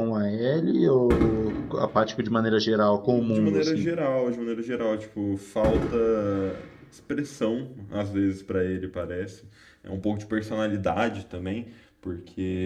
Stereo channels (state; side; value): identical; both; correlation 1.00